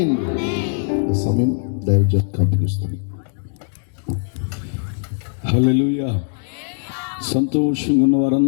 సమయం దైవజనం కంపిస్తుంది. హల్లెలూయా. సంతోషంగా ఉన్న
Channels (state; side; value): silent; right; digital silence